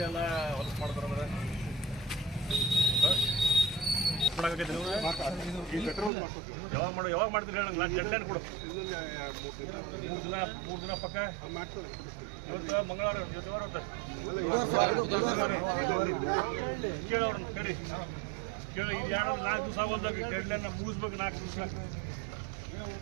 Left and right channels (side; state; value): left; drops out; at 6.1 s